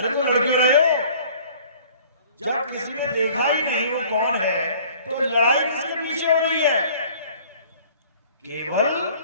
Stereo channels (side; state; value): both; inverted; correlation -0.52